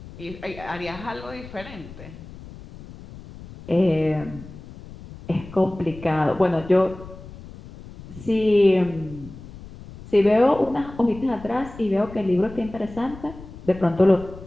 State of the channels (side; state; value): left; noise; rumble, 16 dB below the sound